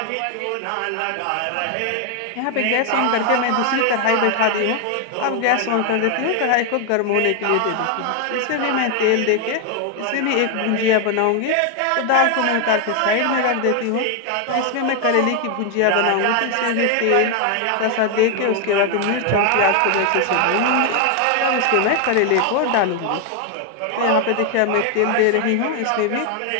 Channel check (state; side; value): different; both; correlation 0.01